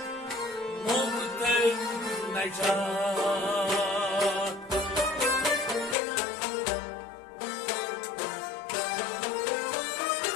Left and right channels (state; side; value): drops out; right; at 6.0 s